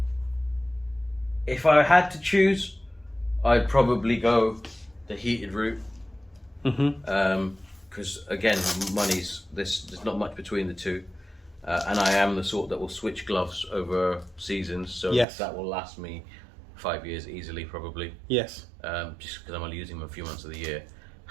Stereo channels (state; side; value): drops out; left; at 15.2 s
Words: if I had to choose, I'd probably go the heated route. Mm-hmm. Because again, there's not much between the two, and I am the sort that will switch gloves over seasons, so Yes. that will last me 5 years easily, probably. Yes. Just because I'm only using them a few months of the year.